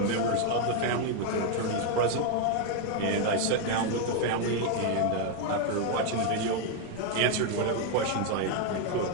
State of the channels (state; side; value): different; both; correlation 0.00